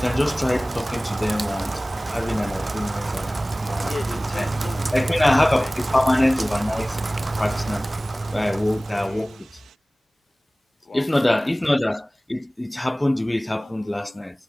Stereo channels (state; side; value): normal; both; correlation 0.98